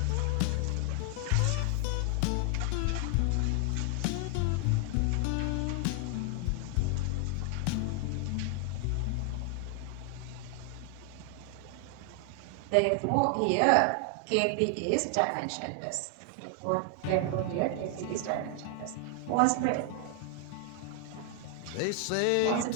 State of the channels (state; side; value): different; both; correlation 0.00